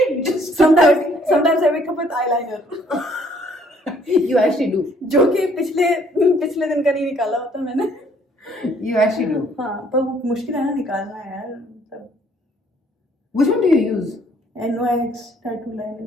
just Sometimes I wake up with eyeliner. You actually do. जो कि पिछले दिन का नहीं निकाला होता मैंने. You actually do. हाँ पर वो मुश्किल है ना निकालना यार. मतलब Which one do you use? NYX tattoo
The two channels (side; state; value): both; normal; correlation 0.63